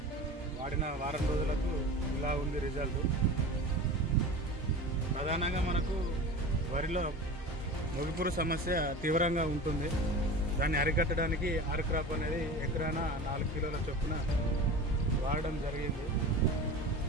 వాడిన వారం రోజులకు ఇలా ఉంది రిజల్ట్. ప్రధానంగా మనకు వరిలో మొగిపురు సమస్య తీవ్రంగా ఉంటుంది. దాన్ని అరికట్టడానికి ఆర్క్రాప్ అనేది ఎకరాన 4 కిలోల చొప్పున వాడడం జరిగింది.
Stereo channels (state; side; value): normal; both; correlation 0.33